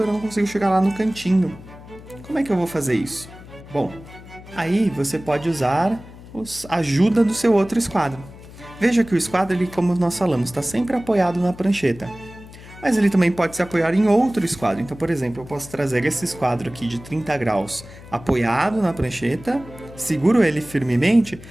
eu não consigo chegar lá no cantinho. Como é que eu vou fazer isso? Bom, aí você pode usar a ajuda do seu outro esquadro. Veja que o esquadro, ele, como nós falamos, está sempre apoiado na prancheta. Mas ele também pode se apoiar em outro esquadro. Então, por exemplo, eu posso trazer esse esquadro aqui de 30 graus apoiado na prancheta, seguro ele firmemente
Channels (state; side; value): noise; left; hum, 18 dB below the sound